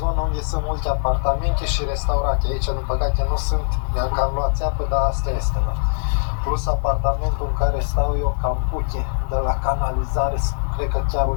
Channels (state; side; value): silent; right; 65 dB below the other